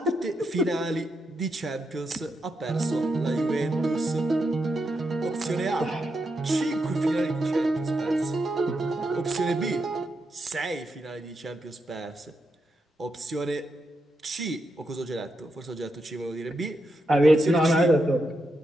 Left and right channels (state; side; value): normal; both; correlation 0.84